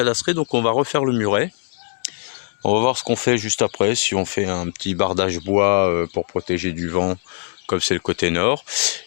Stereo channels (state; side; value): silent; right; digital silence